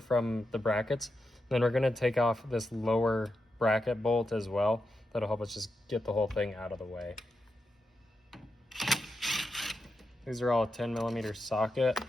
the brackets. Then we're going to take off this lower bracket bolt as well. That'll help us just get the whole thing out of the way. These are all a 10mm socket.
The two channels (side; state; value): both; normal; correlation 0.87